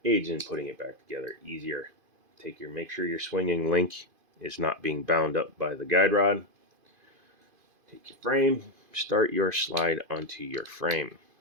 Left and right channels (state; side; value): late; left; 2.5 ms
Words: Aids in putting it back together easier. Make sure your swinging link is not being bound up by the guide rod. Take your frame, start your slide onto your frame.